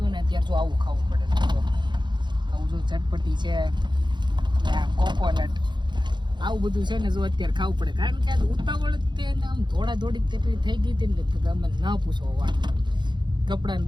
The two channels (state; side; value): late; left; 0.22 ms